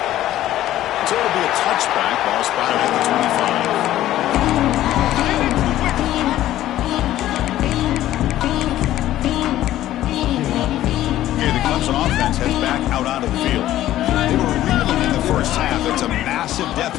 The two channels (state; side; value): quieter; right; 13.7 dB